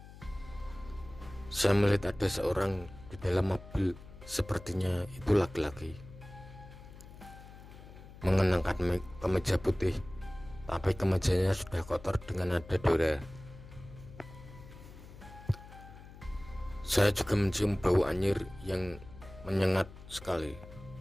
saya melihat ada seorang di dalam mobil. Sepertinya itu laki-laki, mengenakan kemeja putih, tapi kemejanya sudah kotor dengan ada noda. Saya juga mencium bau anyir yang menyengat sekali.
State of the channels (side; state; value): left; noise; hum, 17 dB below the sound